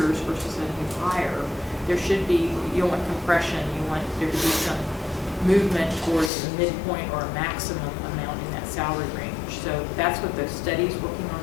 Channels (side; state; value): right; drops out; at 6.3 s